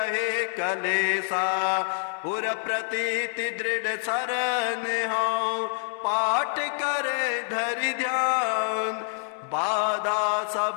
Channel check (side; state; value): right; silent; 60 dB below the other